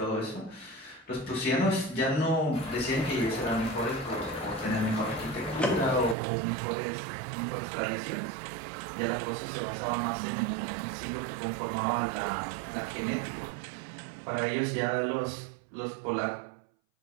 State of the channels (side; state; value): left; drops out; at 6.2 s